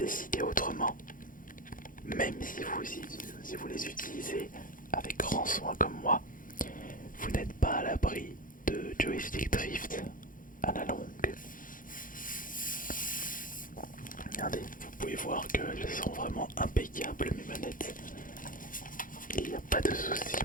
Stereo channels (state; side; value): late; right; 0.40 ms